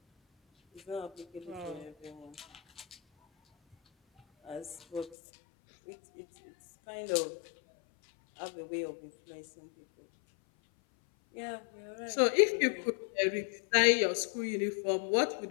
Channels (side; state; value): right; drops out; at 5.2 s